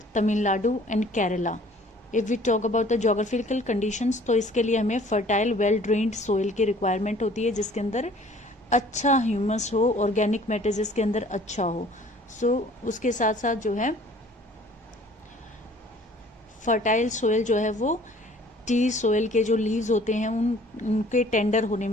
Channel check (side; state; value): both; normal; correlation 0.53